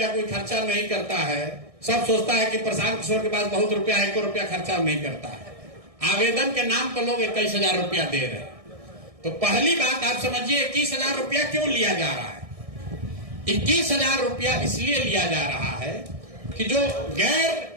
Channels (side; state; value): left; late; 1.6 ms